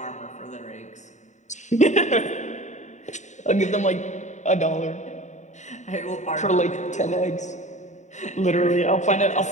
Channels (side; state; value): right; late; 0.34 ms